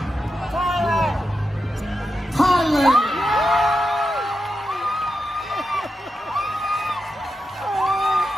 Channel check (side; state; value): both; normal; correlation 0.88